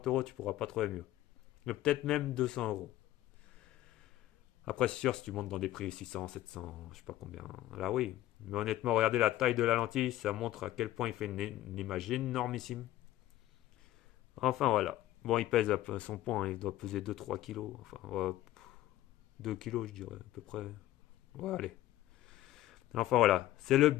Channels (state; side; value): quieter; right; 14.6 dB